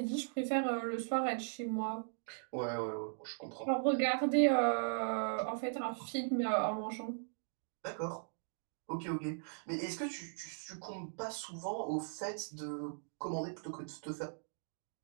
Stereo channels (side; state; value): left; silent; digital silence